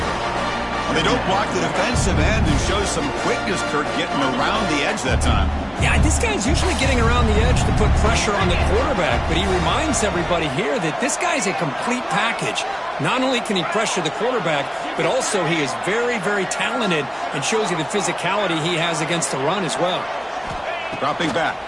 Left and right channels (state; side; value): identical; both; correlation 1.00